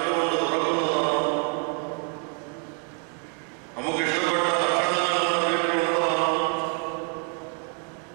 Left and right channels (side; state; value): left; quieter; 38.8 dB